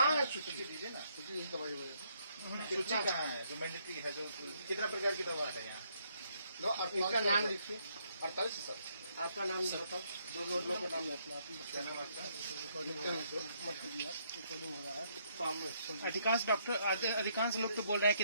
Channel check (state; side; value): inverted; both; correlation -0.72